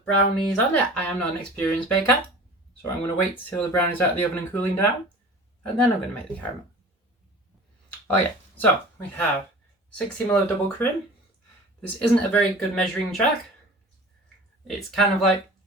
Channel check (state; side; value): normal; both; correlation 0.40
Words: brownie's on it. I am not an experienced baker, so I'm going to wait till the brownie's out of the oven and cooling down, and then I'm going to make the caramel. Oh yeah, so we have 60 ml of double cream. This isn't a very good measuring jug. It's kind of like,